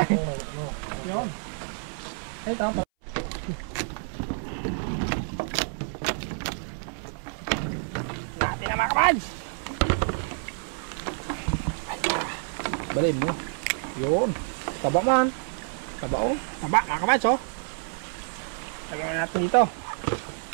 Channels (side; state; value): left; silent; 59 dB below the other